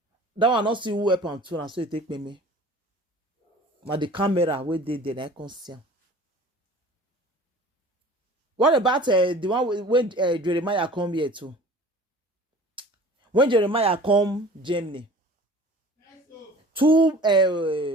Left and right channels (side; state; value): both; normal; correlation 0.44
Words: That one not see who help am too, and so it take me. But the camera where they I can't see. What about the one when Jeremiah come here too? When Jeremiah come Germany, two